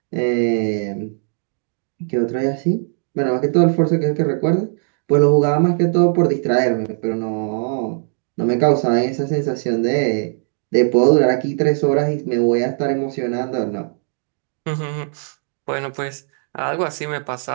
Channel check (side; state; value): left; silent; digital silence